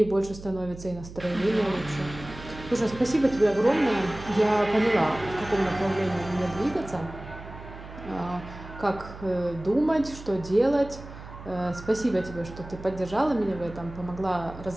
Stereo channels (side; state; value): right; noise; hum, 14 dB below the sound